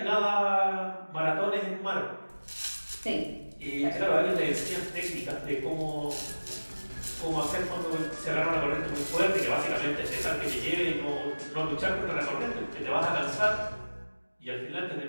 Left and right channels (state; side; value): inverted; both; correlation -1.00